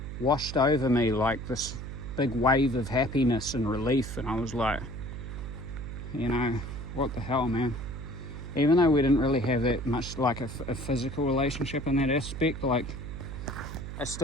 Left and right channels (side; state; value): right; noise; hum, 8 dB below the sound